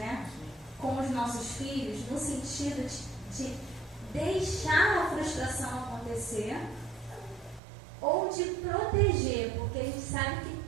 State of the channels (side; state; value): left; drops out; at 7.6 s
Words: com os nossos filhos, no sentido de deixar a frustração acontecer, ou de proteger, porque a gente sabe que